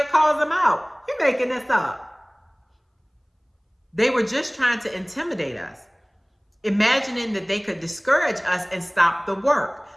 calls them out. You're making this up. They were just trying to intimidate us, imagining that they could discourage us and stop the work.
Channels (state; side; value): identical; both; correlation 1.00